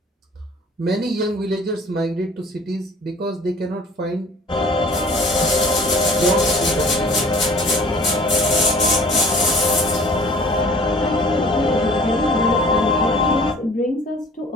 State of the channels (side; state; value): both; normal; correlation 0.50